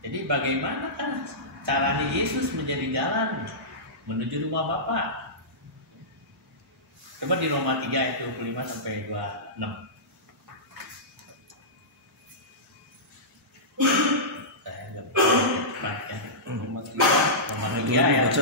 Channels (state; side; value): normal; both; correlation -0.17